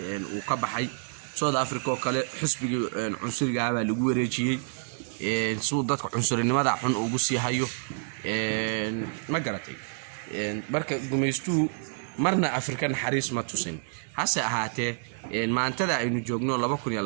uu ka baxay South Africa oo kale xisbiga cunsuriga ah lagu wareejiyay soo dadka cunsurinimada xun ugu sii hayo ma garatay marka gumeysto marna Afrikan xariis ma tusin hase ahaatee maantada aynu joogno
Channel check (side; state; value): left; silent; digital silence